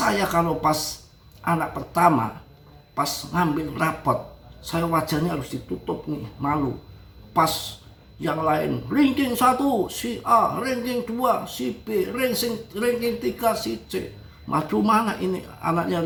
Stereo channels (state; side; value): identical; both; correlation 1.00